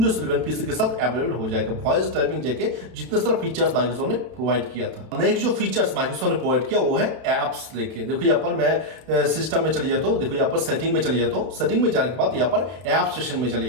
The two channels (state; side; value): late; left; 32 ms